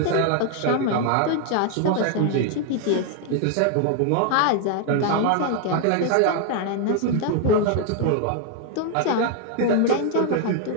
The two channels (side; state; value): both; different; correlation 0.00